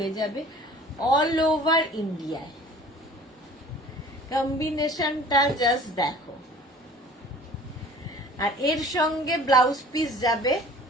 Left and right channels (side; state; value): both; normal; correlation 0.47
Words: যাবে অল ওভার ইন্ডিয়ায়। কম্বিনেশনটা জাস্ট দেখো, আর এর সঙ্গে ব্লাউজ পিস যাবে